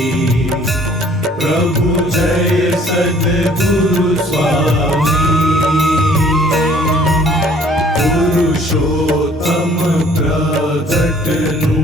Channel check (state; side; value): normal; both; correlation 0.56